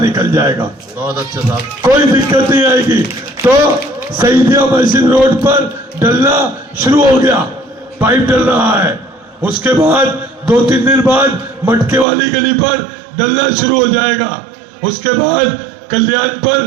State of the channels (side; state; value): left; drops out; at 12.1 s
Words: निकल जाएगा। बहुत अच्छे साहब, कोई दिक्कत नहीं आएगी। तो शहीदिया मस्जिद रोड पर डलना शुरू हो गया, पाइप डल रहा है। उसके बाद 2-3 दिन बाद मटके वाली गली पर डलना शुरू हो जाएगा। उसके बाद कल्याण पर